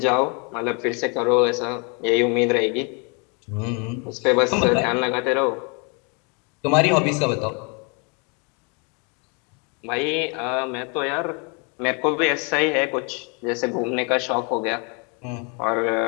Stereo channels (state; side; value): quieter; right; 34.3 dB